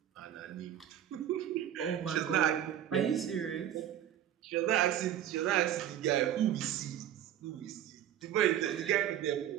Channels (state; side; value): quieter; left; 10.8 dB